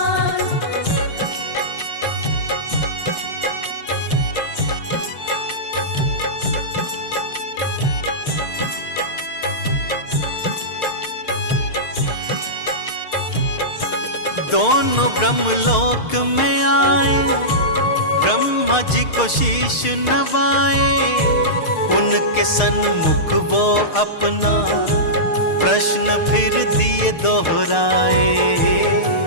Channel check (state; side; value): late; right; 6.5 ms